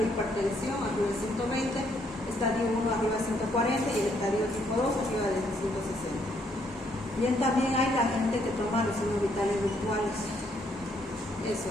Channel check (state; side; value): normal; both; correlation 0.71